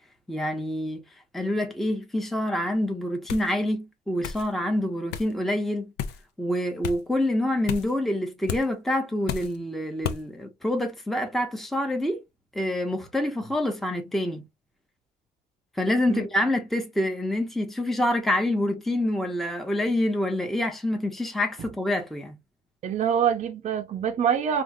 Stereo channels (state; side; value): normal; both; correlation 0.77